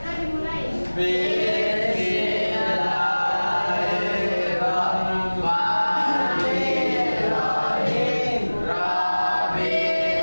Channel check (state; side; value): inverted; both; correlation -1.00